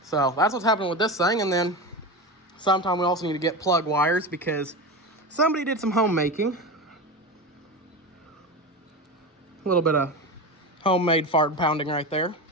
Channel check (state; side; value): normal; both; correlation 0.23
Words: So that's what's happening with this thing. And then sometime we also need to get plug wires because somebody did some homemaking. A little bit of homemade fart pounding right there